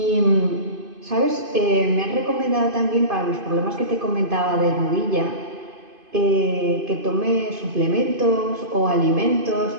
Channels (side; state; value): left; late; 2.5 ms